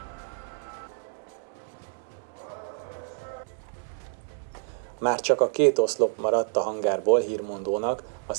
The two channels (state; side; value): silent; left; digital silence